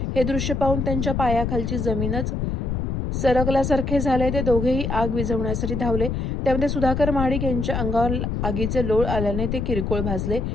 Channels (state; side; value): noise; left; rumble, 1 dB below the sound